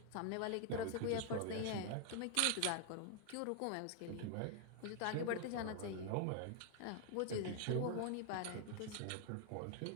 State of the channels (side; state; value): both; different; correlation 0.00